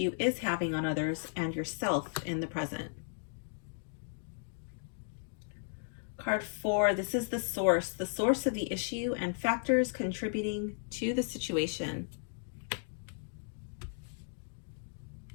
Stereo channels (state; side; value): silent; right; digital silence